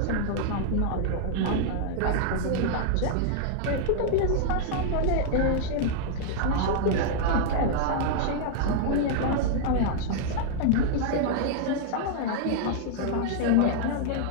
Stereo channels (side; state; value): both; different; correlation -0.01